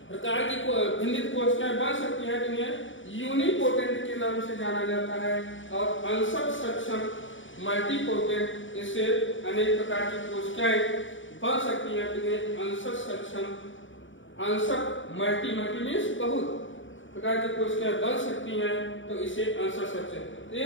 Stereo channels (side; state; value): right; late; 0.56 ms